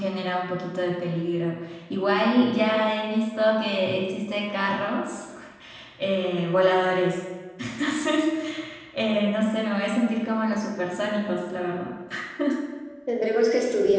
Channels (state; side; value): identical; both; correlation 1.00